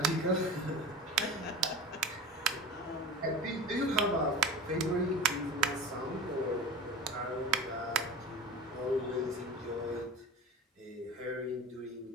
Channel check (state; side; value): normal; both; correlation 0.32